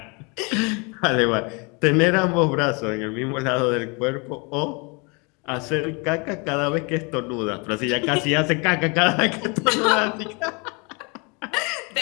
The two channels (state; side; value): quieter; right; 30.8 dB